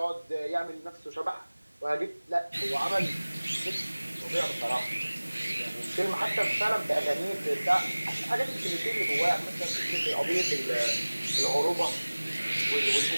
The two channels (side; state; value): both; inverted; correlation -1.00